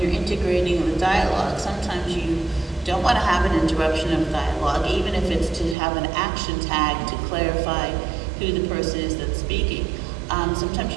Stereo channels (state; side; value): drops out; left; at 5.8 s